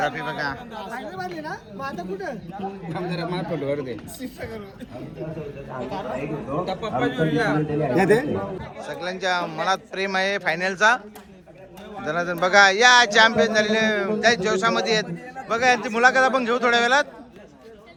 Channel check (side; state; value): both; identical; correlation 1.00